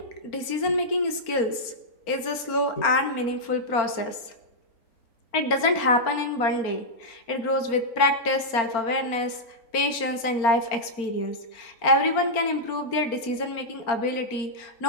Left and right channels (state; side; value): late; right; 4.3 ms